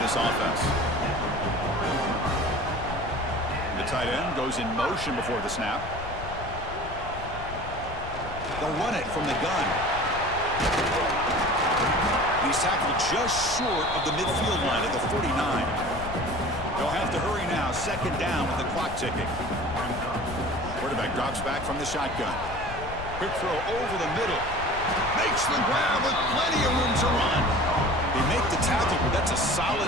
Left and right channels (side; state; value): left; noise; rumble, 11 dB below the sound